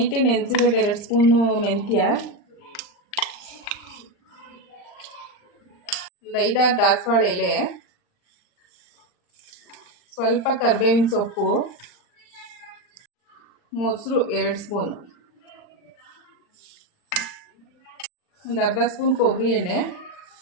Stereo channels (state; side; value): late; right; 39 ms